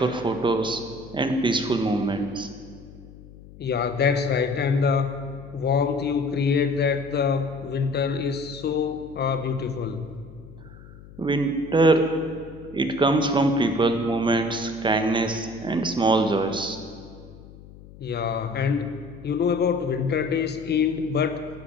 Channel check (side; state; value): left; noise; hum, 19 dB below the sound